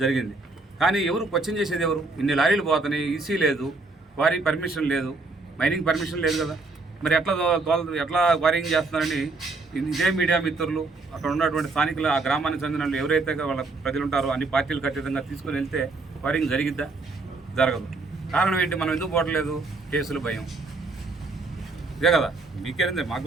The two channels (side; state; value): left; quieter; 3.5 dB